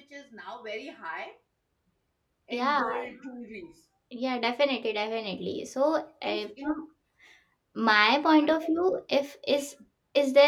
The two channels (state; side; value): identical; both; correlation 1.00